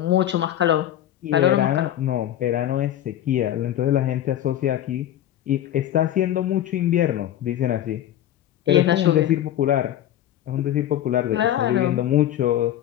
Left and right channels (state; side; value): quieter; right; 11.9 dB